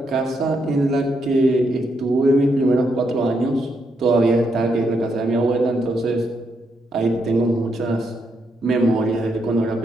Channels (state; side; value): normal; both; correlation 0.78